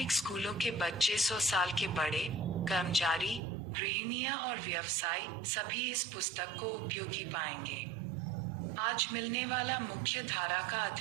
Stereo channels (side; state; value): left; drops out; at 3.4 s